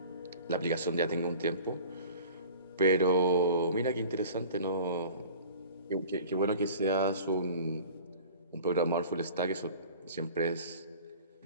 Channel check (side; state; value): both; inverted; correlation -0.43